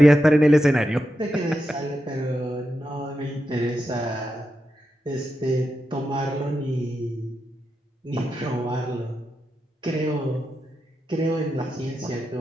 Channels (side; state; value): both; normal; correlation 0.88